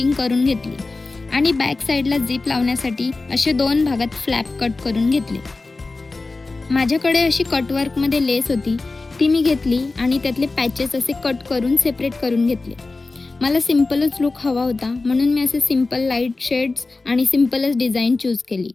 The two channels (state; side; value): quieter; right; 3.5 dB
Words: करून घेतली आणि बॅक साईडला झिप लावण्यासाठी असे 2 भागात फ्लॅप कट करून घेतले. माझ्याकडे अशी कटवर्कमध्ये लेस होती, ती मी घेतली आणि त्यातले पॅचेस असे कट करून सेपरेट करून घेतले. मला सिम्पलच लुक हवा होता, म्हणून मी असे सिम्पल लाईट शेड्स आणि सिम्पलच डिझाईन चूज केली.